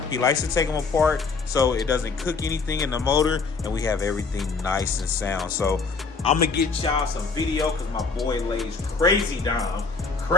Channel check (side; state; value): right; quieter; 4.6 dB